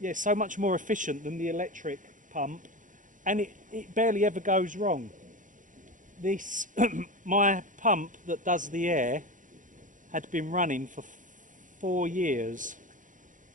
so much more efficient than the electric pump, and it barely ever goes wrong. This my pump that does the air had been running for 4 years,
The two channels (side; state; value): left; late; 0.38 ms